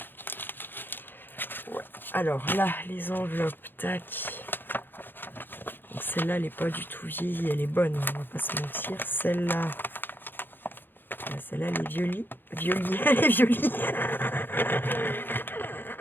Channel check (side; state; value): right; late; 0.097 ms